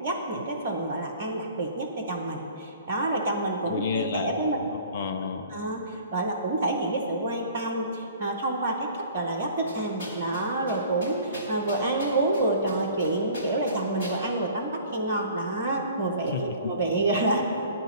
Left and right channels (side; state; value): both; inverted; correlation -0.48